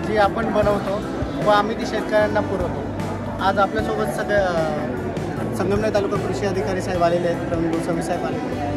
जी आपण बनवतो व आम्ही ती शेतकऱ्यांना पुरवतो. आज आपल्यासोबत संगमनेर तालुका कृषी अधिकारी साहेब आलेले आहेत, प्रवीण गोस्वामी साहेब आलेले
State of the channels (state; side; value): identical; both; correlation 1.00